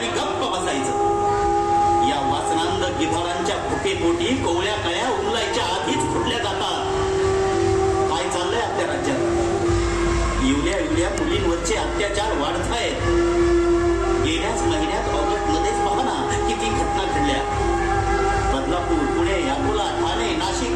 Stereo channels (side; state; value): both; identical; correlation 1.00